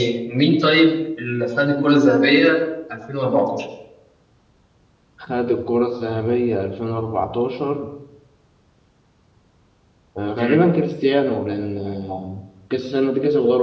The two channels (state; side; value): identical; both; correlation 1.00